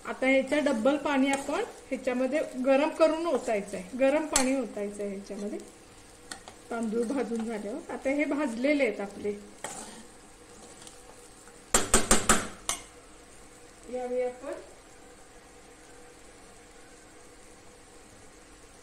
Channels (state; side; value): identical; both; correlation 1.00